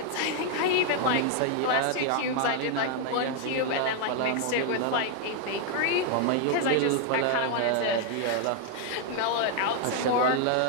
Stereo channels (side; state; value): both; different; correlation 0.00